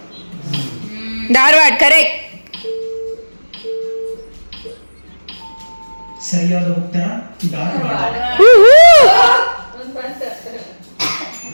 ಧಾರವಾಡ ಕರೆಕ್ಟ್. ಸರಿಯಾದ ಉತ್ತರ ಧಾರವಾಡ.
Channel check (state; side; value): inverted; both; correlation -1.00